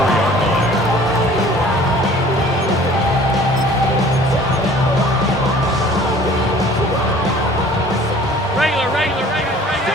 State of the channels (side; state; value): both; normal; correlation 0.50